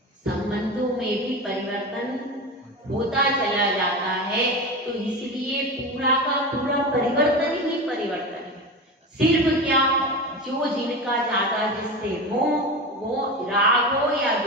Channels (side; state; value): both; normal; correlation 0.25